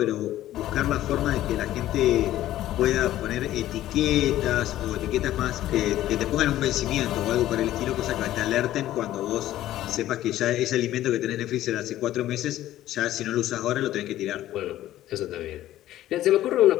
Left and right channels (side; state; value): right; quieter; 13.8 dB